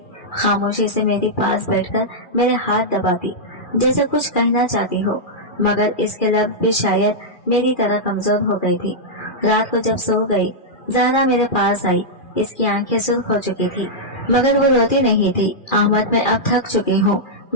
खामोशी से मेरे पास बैठकर मेरे हाथ दबाती जैसे कुछ कहना चाहती हो, मगर इसके लफ्ज़ भी शायद मेरी तरह कमजोर हो गई थी। रात को जब सो गई ज़हरा मेरे पास आई। इसकी आंखें सुर्ख हो चुकी थी मगर वो रोती नहीं थी। अहमद, मैं अब थक चुकी हूँ।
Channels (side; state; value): right; late; 2.4 ms